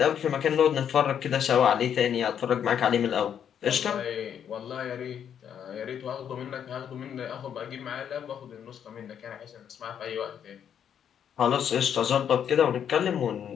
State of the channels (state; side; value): quieter; right; 8.7 dB